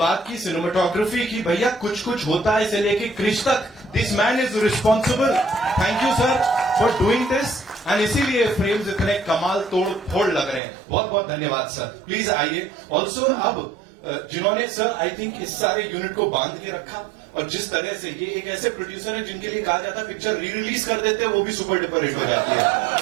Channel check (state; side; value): drops out; left; at 10.6 s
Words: की, सिनेमाटोग्राफी की, भैया कुछ कुछ होता है इसे लेके क्रिश तक। This man is responsible. Thank you sir for doing this, and इसीलिए फ्रेम्स इतने कमाल तोड़ फोड़ लग रहे हैं। बहुत बहुत धन्यवाद सर। प्लीज आइए। ऑल्सो अब जिन्होंने सर आई थिंक इस सारे यूनिट को बांध के रखा, और जिस तरह से ये एक ऐसे प्रोड्यूसर है जिनके लिए कहा जाता है पिक्चर री रिलीज कर देते हैं वो भी सुपर डुपर हिट हो जाती है।